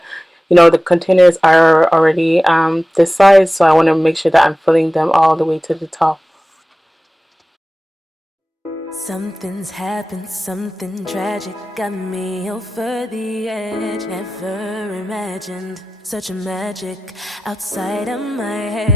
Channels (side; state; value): both; normal; correlation 0.96